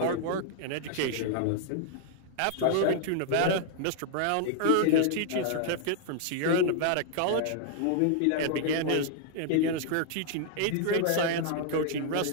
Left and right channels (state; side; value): different; both; correlation -0.01